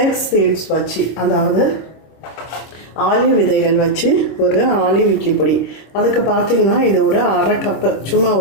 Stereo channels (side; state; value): right; late; 25 ms